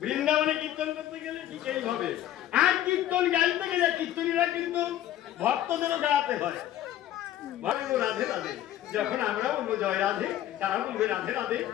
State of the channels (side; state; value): right; quieter; 12.5 dB